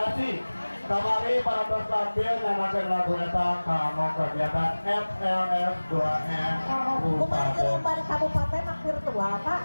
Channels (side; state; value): both; inverted; correlation -1.00